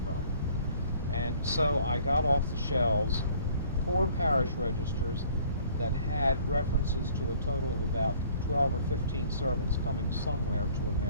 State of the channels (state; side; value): inverted; both; correlation -0.56